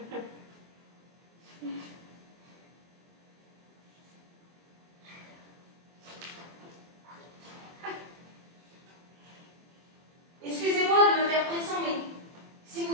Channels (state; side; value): late; left; 24 ms